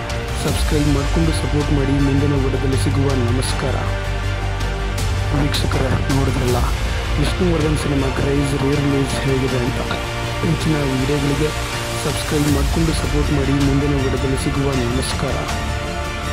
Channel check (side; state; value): both; identical; correlation 1.00